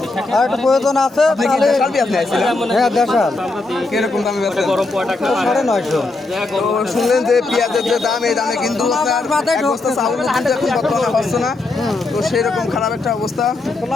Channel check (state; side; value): quieter; right; 3.3 dB